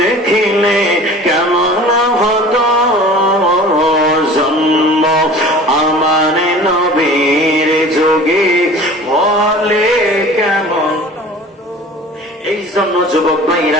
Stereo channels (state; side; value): normal; both; correlation 0.42